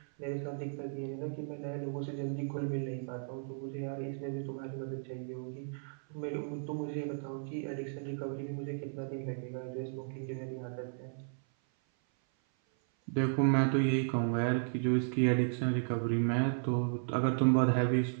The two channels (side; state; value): left; silent; 55 dB below the other